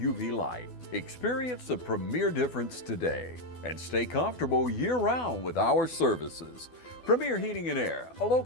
light. Experience the Premier difference today and stay comfortable year-round with our services. Premier Heating and Air, a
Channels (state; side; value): late; right; 12 ms